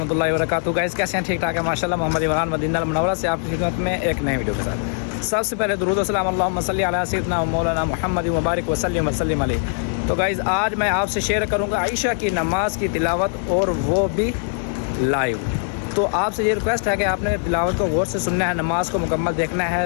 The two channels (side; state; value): right; silent; digital silence